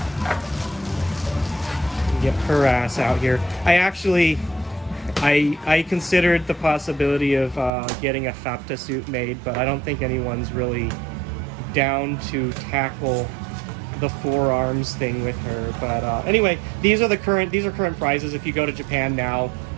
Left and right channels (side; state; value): left; drops out; at 7.7 s